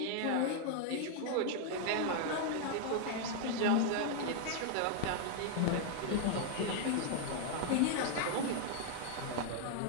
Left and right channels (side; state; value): both; different; correlation 0.00